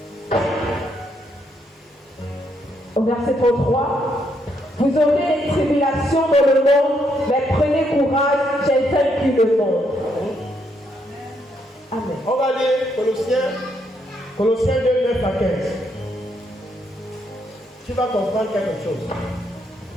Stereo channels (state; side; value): normal; both; correlation 0.75